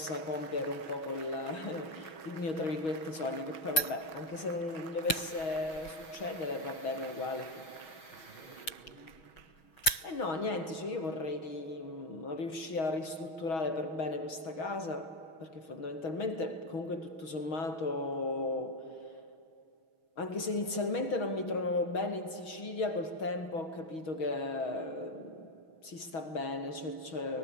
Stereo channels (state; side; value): late; right; 6.3 ms